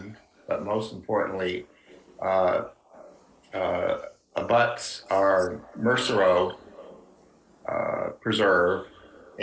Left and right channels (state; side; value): identical; both; correlation 1.00